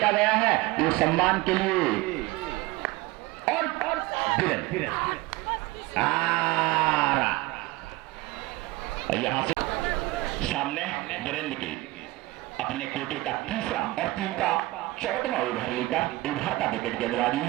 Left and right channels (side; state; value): left; quieter; 20.1 dB